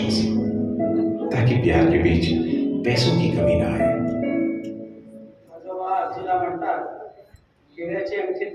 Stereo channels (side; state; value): both; identical; correlation 1.00